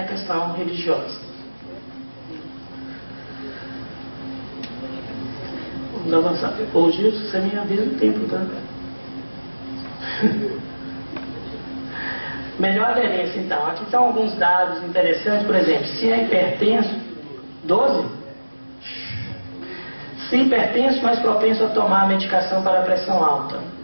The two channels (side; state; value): both; inverted; correlation -1.00